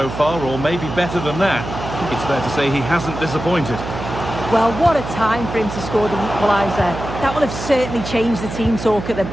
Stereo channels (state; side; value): noise; right; hum, 8 dB below the sound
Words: far, or maybe better than that. I think it's fair to say he hasn't disappointed. Well, what a time for him to score the equaliser. That will have certainly changed the team talk at the